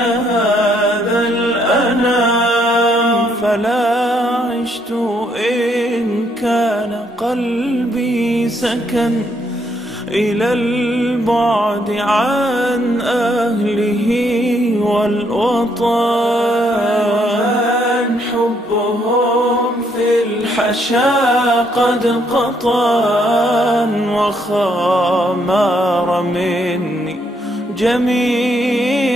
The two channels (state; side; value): normal; both; correlation 0.72